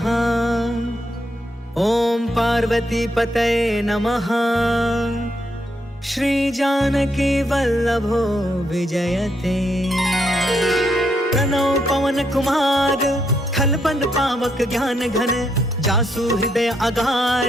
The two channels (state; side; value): normal; both; correlation 0.77